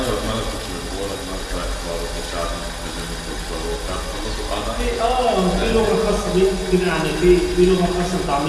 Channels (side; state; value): both; identical; correlation 1.00